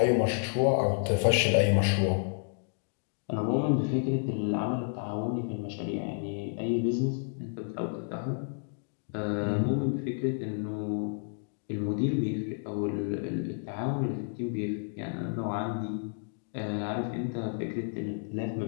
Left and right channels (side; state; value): right; silent; digital silence